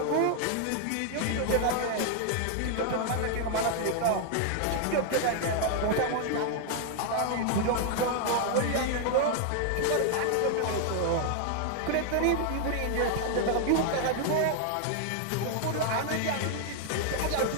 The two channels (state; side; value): different; both; correlation 0.00